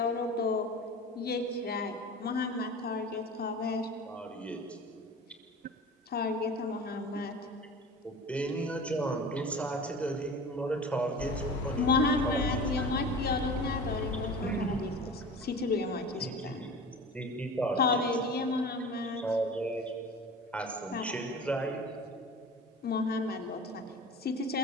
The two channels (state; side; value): normal; both; correlation 0.36